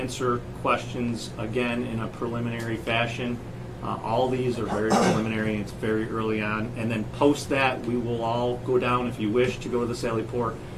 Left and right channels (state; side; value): identical; both; correlation 1.00